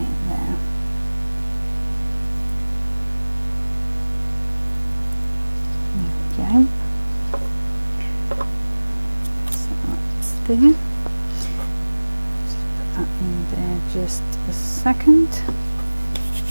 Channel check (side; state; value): both; inverted; correlation -1.00